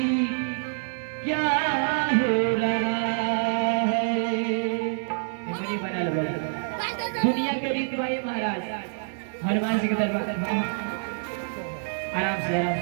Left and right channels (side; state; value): left; silent; 59 dB below the other